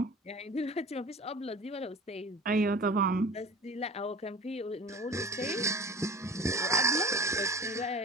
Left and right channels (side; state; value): both; normal; correlation 0.39